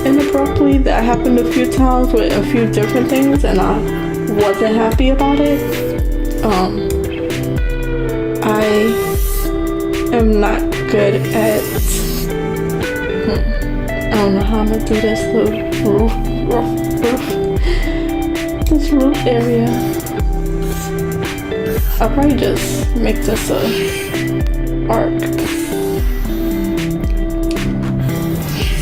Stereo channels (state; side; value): identical; both; correlation 1.00